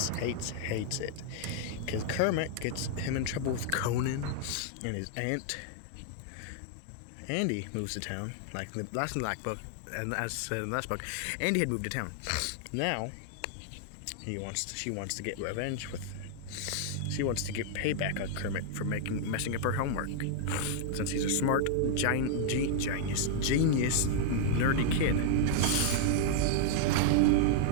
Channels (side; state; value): both; different; correlation -0.01